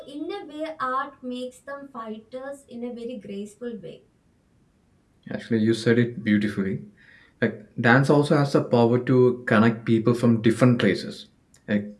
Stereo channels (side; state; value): both; identical; correlation 1.00